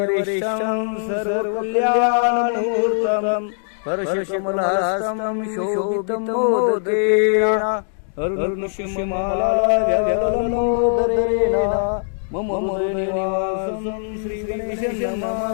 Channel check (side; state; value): right; silent; digital silence